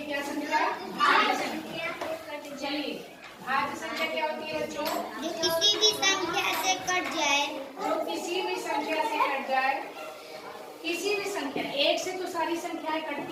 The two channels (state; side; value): identical; both; correlation 1.00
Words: संख्या? भाज्य संख्या। चलिए, भाज्य संख्या क्या होती है बच्चों? जो किसी भी संख्या से कट जाए। जो किसी भी संख्या से कट जाए। किसी भी संख्या, एक से तो सारी संख्याएं